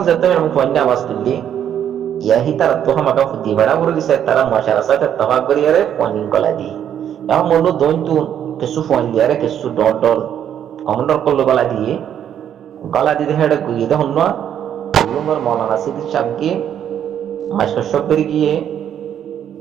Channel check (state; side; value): quieter; left; 9.6 dB